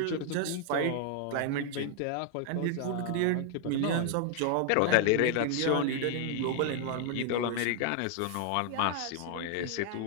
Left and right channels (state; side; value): different; both; correlation 0.00